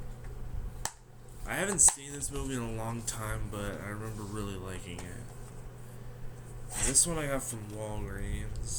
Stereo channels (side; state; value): both; identical; correlation 1.00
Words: I haven't seen this movie in a long time, but I remember really liking it. And this one I got from